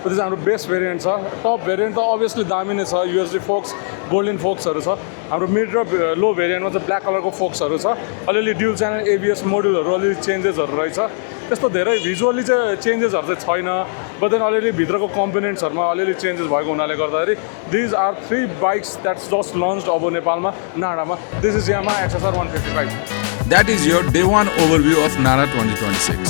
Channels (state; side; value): silent; right; digital silence